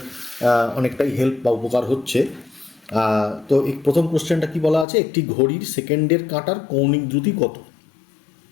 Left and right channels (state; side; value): drops out; right; at 4.9 s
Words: অনেকটাই হেল্প বা উপকার হচ্ছে। তো এই প্রথম কোশ্চেনটা কি বলা আছে, একটি ঘড়ির সেকেন্ডের কাঁটার কৌণিক দ্রুতি কত?